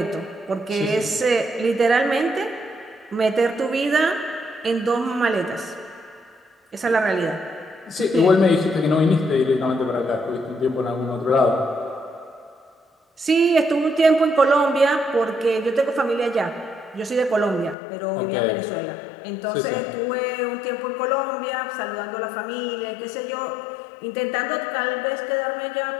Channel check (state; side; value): drops out; right; at 17.8 s